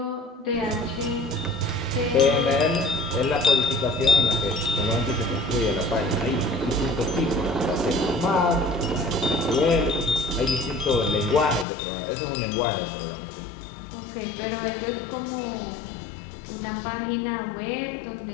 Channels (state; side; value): drops out; right; at 11.7 s